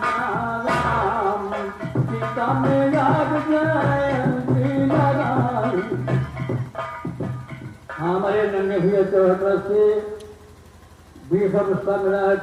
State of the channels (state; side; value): identical; both; correlation 1.00